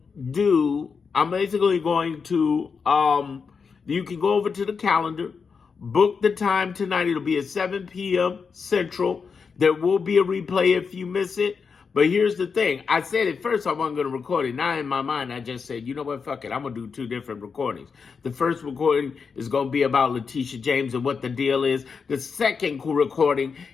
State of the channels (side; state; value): right; quieter; 5.6 dB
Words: can go over to the calendar, book the time tonight. It'll be at 7 p.m. Central. There will be a replay if you miss it. But here's the thing. I said at first I wasn't going to record it. Now in my mind, I just said, you know what, fuck it. I'm going to do 2 different recordings. The first recording is going to be about Leticia James and what the deal is. The second recording